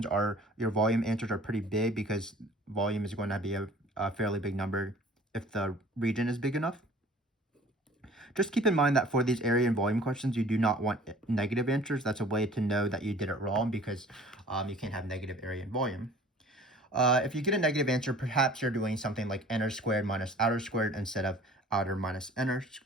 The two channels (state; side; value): normal; both; correlation 0.48